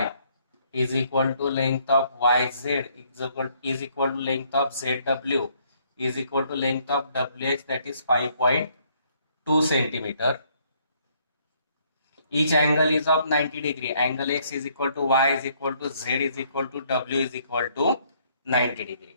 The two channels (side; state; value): both; inverted; correlation -0.67